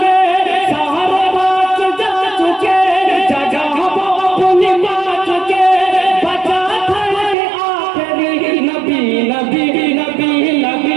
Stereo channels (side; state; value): left; drops out; at 7.4 s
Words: सारे बात जा चुके, जगह हम अपनी बात चुके। बचा था ये आखिरी नबी नबी नबी